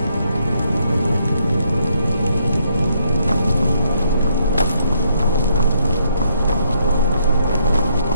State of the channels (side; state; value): both; inverted; correlation -0.73